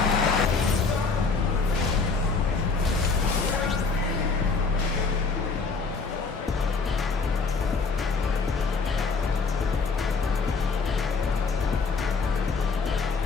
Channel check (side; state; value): right; quieter; 4.6 dB